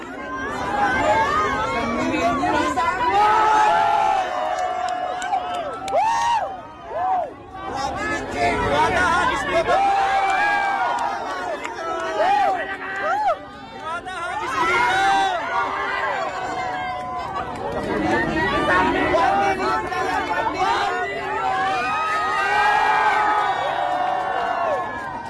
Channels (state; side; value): identical; both; correlation 1.00